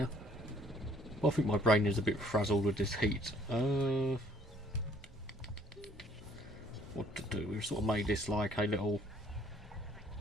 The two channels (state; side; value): normal; both; correlation 0.60